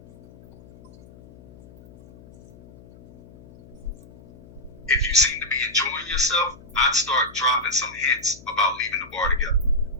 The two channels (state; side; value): noise; left; hum, 22 dB below the sound